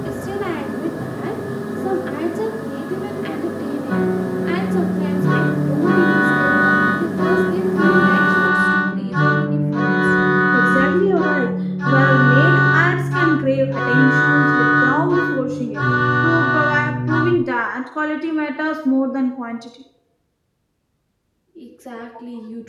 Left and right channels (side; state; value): both; identical; correlation 1.00